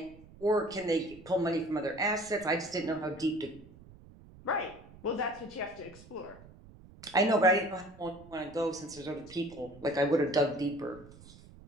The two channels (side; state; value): right; noise; rumble, 21 dB below the sound